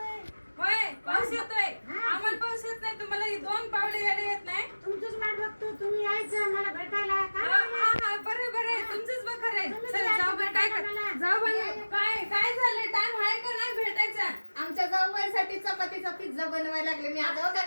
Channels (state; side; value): inverted; both; correlation -1.00